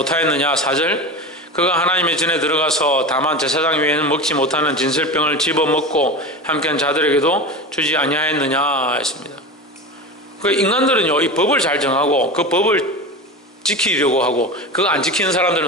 4절 그가 하나님의 전에 들어가서 다만 제사장 외에는 먹지 못하는 진설병을 집어먹고 함께한 자들에게도 주지 아니하였느냐 했습니다. 그 인간들은요 이 법을 잘 정하고 그 법을 지키려고 하고 그거 안 지키는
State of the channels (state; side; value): normal; both; correlation 0.27